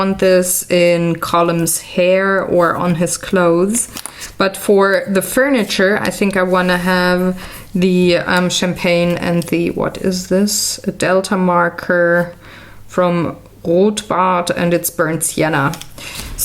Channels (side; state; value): both; identical; correlation 1.00